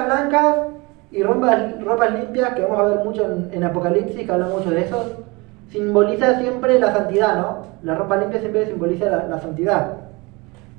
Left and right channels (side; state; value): left; quieter; 25.5 dB